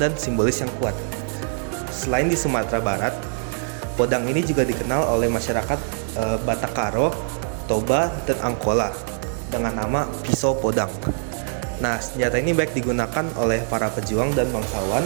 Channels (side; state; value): left; silent; digital silence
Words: simbolis yang kuat. Selain di Sumatera Barat, podang ini juga dikenal oleh masyarakat Batak Karo, Toba, dan Angkola dengan nama pisau podang. Nah, senjata ini baik digunakan oleh para pejuang dan bangsawan,